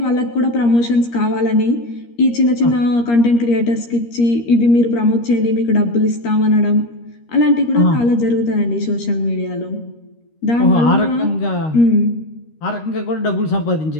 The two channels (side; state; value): right; late; 13 ms